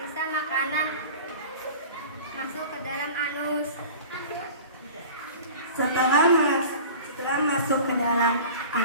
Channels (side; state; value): both; inverted; correlation -0.39